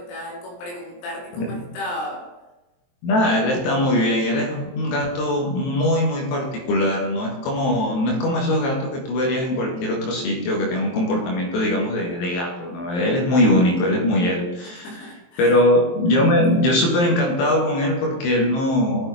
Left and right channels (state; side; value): late; right; 23 ms